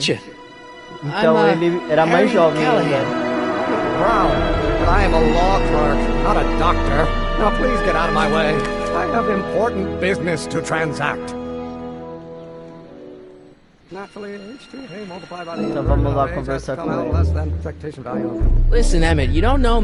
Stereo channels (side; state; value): both; identical; correlation 1.00